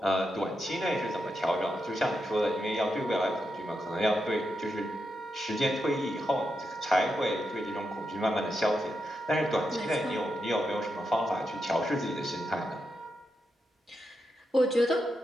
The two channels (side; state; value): both; normal; correlation 0.85